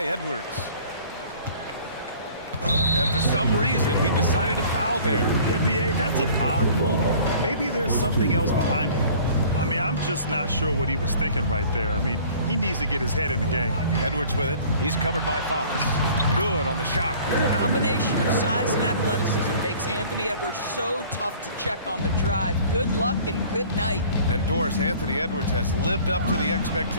Edwards. And for some reason, he decided to foul there. Yeah, B.A., that's an odd move. Maybe there's something else behind it. I mean, I'm just not sure what he was thinking right there. I mean, he needs to get his head in the game. Edwards with it. He's covered by Fox. Good on the shot. The combination of size and athleticism makes Anthony Edwards so tough to check on the drive. Good luck and good night. And Doris, Anthony Edwards has lived up to the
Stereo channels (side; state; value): both; inverted; correlation -0.49